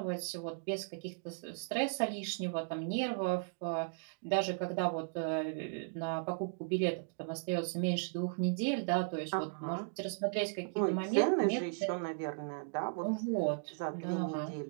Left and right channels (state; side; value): silent; left; digital silence